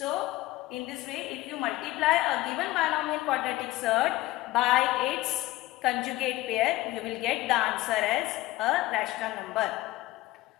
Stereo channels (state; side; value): quieter; right; 17.9 dB